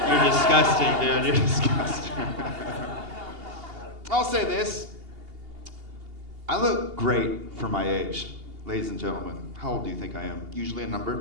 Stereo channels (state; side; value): late; left; 2.8 ms